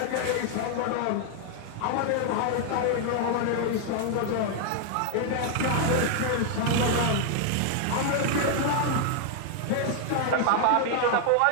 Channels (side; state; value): both; different; correlation 0.00